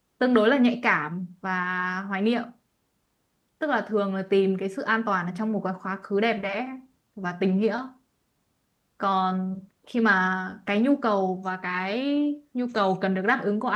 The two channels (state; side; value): identical; both; correlation 1.00